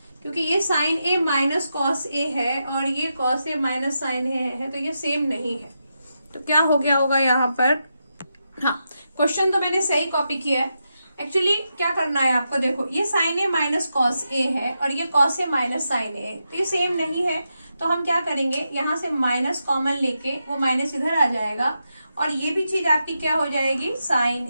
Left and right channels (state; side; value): inverted; both; correlation -0.86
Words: क्योंकि ये साइन ए माइनस कॉस ए है और ये कॉस ए माइनस साइन ए है, तो ये सेम नहीं है। तो क्या हो गया होगा यहाँ पर, हाँ क्वेश्चन तो मैंने सही कॉपी किया है। एक्चुअली क्या करना है आपको, देखो ये साइन ए माइनस कॉस ए है और ये कॉस ए माइनस साइन ए है, तो ये सेम नहीं है। तो हम क्या करेंगे, यहाँ से माइनस कॉमन लेके वो माइनस इधर आ जाएगा और ये भी चीज आपकी क्या हो जाएगी,